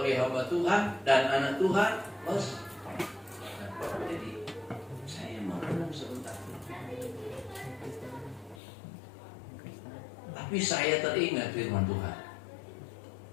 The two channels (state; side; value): drops out; right; at 8.6 s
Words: hamba Tuhan dan anak Tuhan, bos. Jadi saya mau ngomong sebentar, tapi saya teringat firman Tuhan